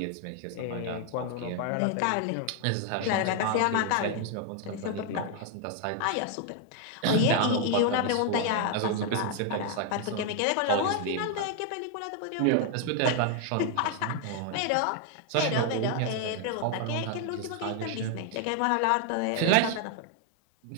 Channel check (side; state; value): both; different; correlation 0.00